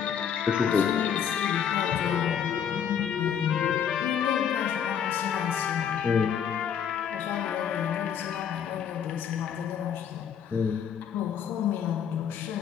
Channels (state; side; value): quieter; right; 8.2 dB